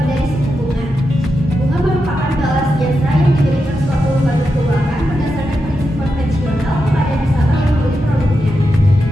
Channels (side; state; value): both; normal; correlation 0.87